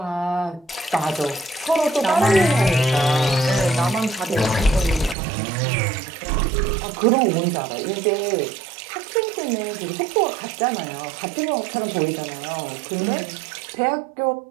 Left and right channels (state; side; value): drops out; left; at 5.2 s